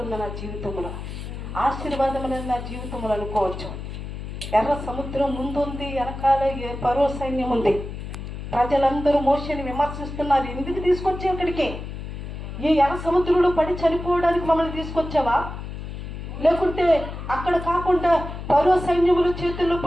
ఉంది నా జీవితంలో, ఆశీర్వాదం అనేది నా జీవితంలో అనుకోవచ్చు. ఎర్ర సముద్రం ముందుంది, వెనకాల ఫరో సైన్యం ఉంది. ప్రజలందరూ మోషేని విమర్శిస్తున్నారు, ఎందుకు తీసుకొచ్చావు ఇక్కడికి? ఈ ఎర్ర సముద్రంలో పడి చనిపోవడానికి మమ్మల్ని తీసుకొచ్చావా? లేకుంటే అక్కడ కాకుండా ఫరో సైన్యముల చేతుల్లో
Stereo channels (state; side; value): noise; left; hum, 8 dB below the sound